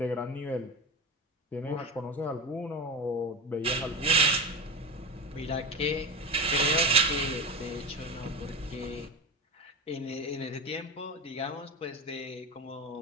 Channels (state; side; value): normal; both; correlation 0.23